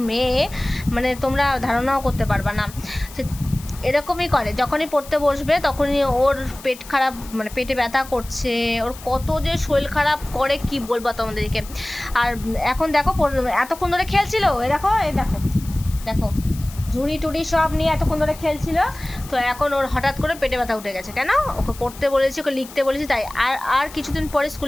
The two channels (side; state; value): left; noise; hiss, 17 dB below the sound